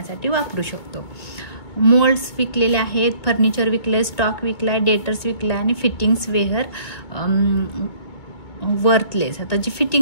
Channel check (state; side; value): late; right; 1.9 ms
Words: वापरू शकतो. मोल्ड्स विकलेले आहेत, फर्निचर विकले, स्टॉक विकलाय, डेटर्स विकलाय आणि फिटिंग्स वेअर वर्थलेस. आता जी